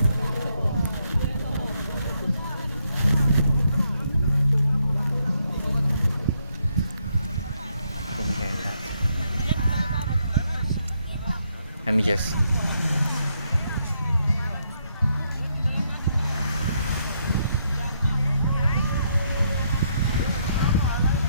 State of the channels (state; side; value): inverted; both; correlation -0.75